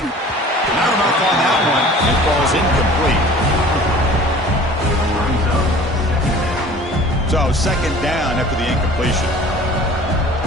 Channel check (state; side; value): normal; both; correlation 0.46